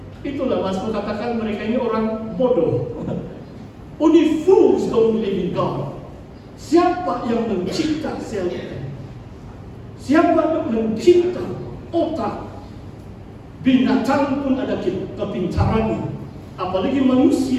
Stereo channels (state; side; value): identical; both; correlation 1.00